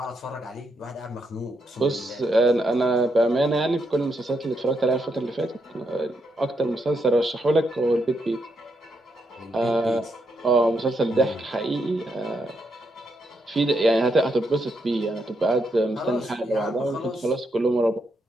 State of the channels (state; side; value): normal; both; correlation 0.80